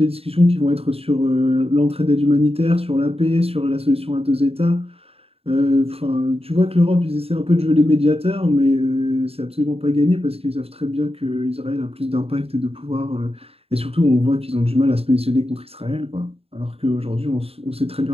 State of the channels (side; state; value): left; late; 0.28 ms